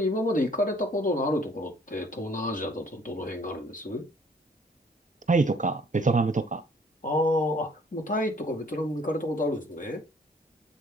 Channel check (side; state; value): both; normal; correlation 0.59